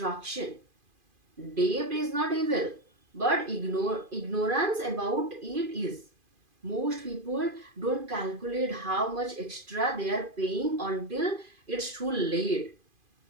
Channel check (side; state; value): left; late; 2.5 ms